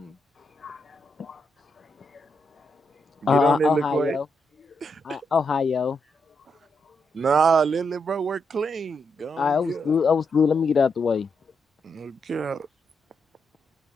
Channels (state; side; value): normal; both; correlation 0.81